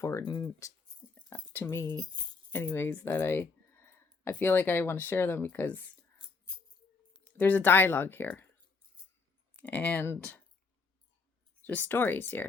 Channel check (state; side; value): quieter; right; 4.4 dB